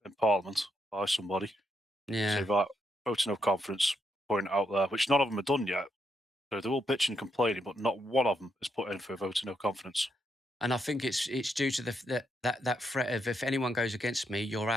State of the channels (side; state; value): both; normal; correlation 0.79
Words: in Parliament by somebody. Yeah. So vote of no confidence, point it out there, which none of them have done yet. So they're all bitching and complaining, but not one of them has put in for a vote of no confidence. And I think it's due to that threat of if anyone goes against me, you're